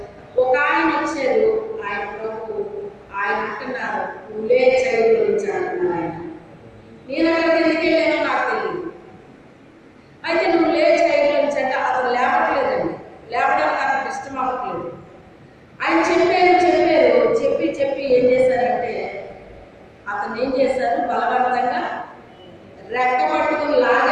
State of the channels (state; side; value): identical; both; correlation 1.00